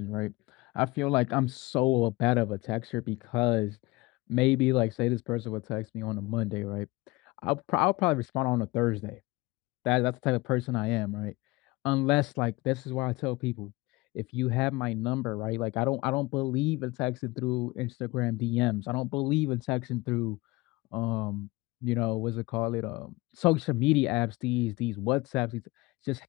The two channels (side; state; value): right; quieter; 21.9 dB